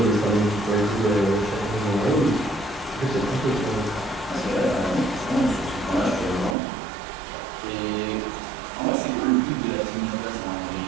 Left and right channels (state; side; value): drops out; left; at 6.6 s